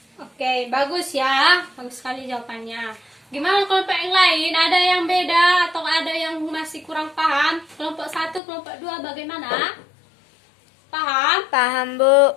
Oke, bagus ya. Bagus sekali jawabannya. Gimana kelompok yang lain? Ada yang beda atau ada yang masih kurang paham? Kelompok 1, kelompok 2 bagaimana? Paham? Paham, Bu.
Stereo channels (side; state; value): right; drops out; at 8.4 s